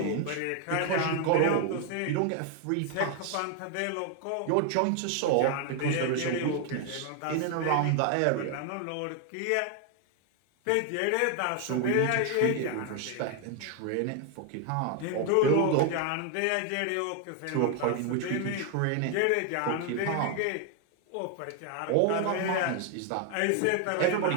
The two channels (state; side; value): different; both; correlation 0.01